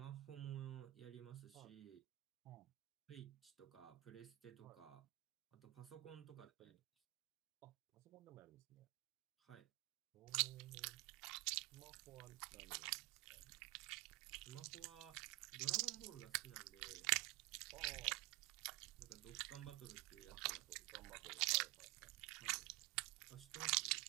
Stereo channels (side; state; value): left; quieter; 20.6 dB